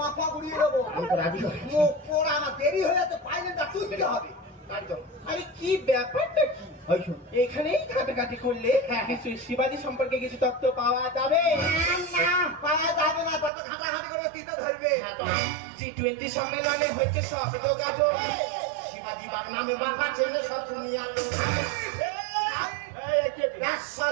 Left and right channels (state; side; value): drops out; left; at 13.5 s